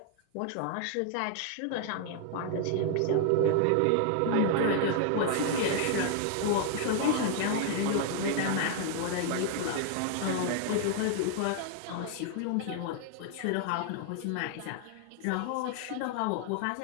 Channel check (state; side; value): different; both; correlation 0.00